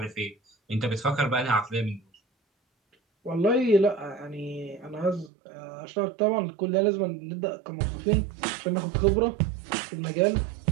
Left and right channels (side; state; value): left; drops out; at 5.3 s